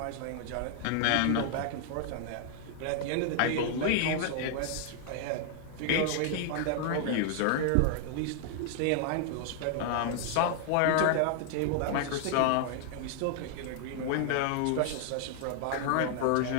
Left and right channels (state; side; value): different; both; correlation 0.00